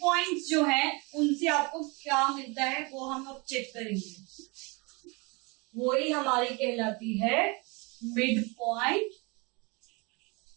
पॉइंट्स जो है उनसे आपको क्या मिलता है वो हम अब चेक करेंगे। वही हमारी कहलाती है मिड पॉइंट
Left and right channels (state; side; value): quieter; left; 28.4 dB